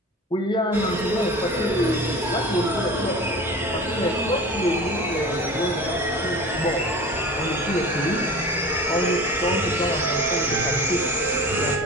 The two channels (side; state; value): both; normal; correlation 0.36